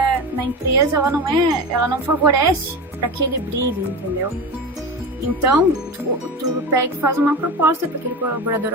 na empresa, ela não favorece para que ele brilhe, entendeu? Então, tu pega e faz uma proposta para aquele colaborador,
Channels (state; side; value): normal; both; correlation 0.26